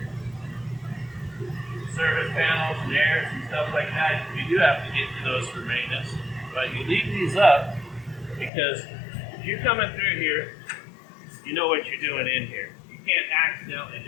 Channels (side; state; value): right; drops out; at 8.5 s